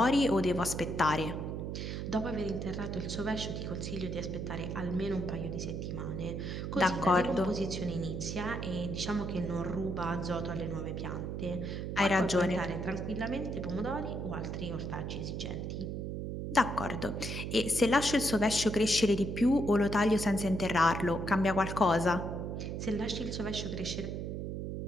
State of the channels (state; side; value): noise; right; hum, 4 dB below the sound